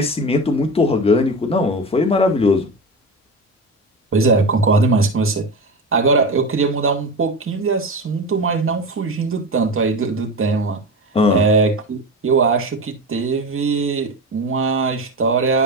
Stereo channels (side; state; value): both; normal; correlation 0.24